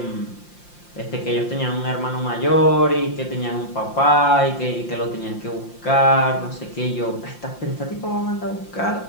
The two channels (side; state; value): right; late; 5.7 ms